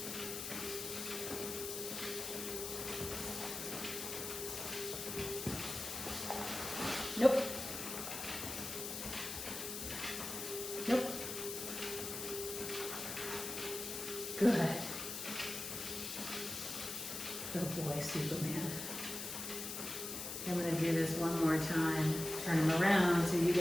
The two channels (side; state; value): left; noise; hiss, 5 dB below the sound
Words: Nope. Nope. Good. Good boy, Superman. I'm going to do this one more time. Turn him around so you